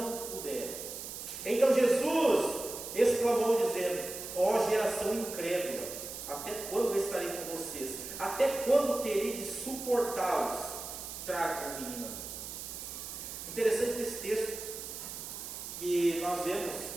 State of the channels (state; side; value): noise; right; hiss, 8 dB below the sound